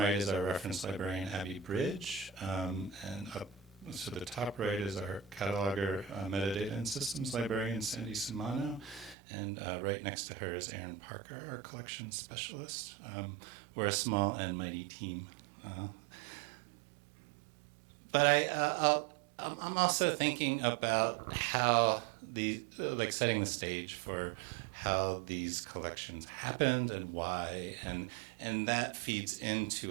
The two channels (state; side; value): drops out; left; at 9.2 s